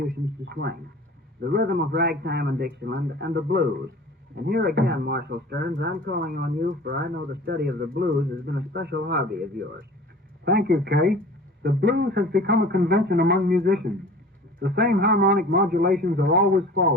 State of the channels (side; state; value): both; normal; correlation 0.42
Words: to swing: the rhythm of ragtime and Dixieland, and the blues. And here again, Marshal Stearns, I'm calling on you, for I know the study of the blues has been a special hobby of yours. Thank you, Kay. The blues has become a convention among musicians. The same harmonic modulations are always